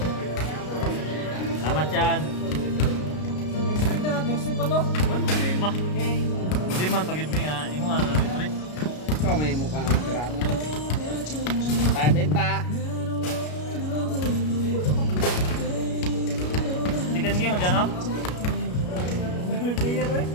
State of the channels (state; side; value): late; right; 33 ms